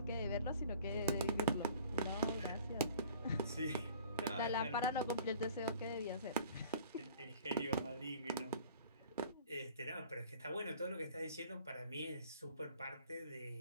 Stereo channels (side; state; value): both; inverted; correlation -0.49